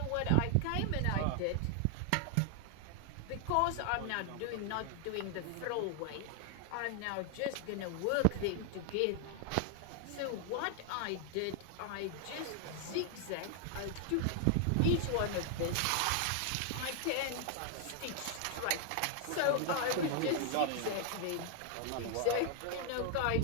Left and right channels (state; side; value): different; both; correlation 0.00